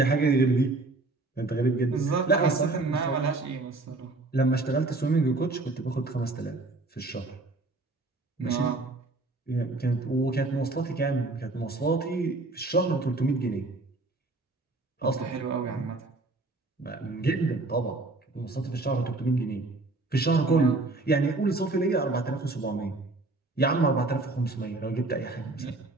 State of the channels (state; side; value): quieter; left; 3.2 dB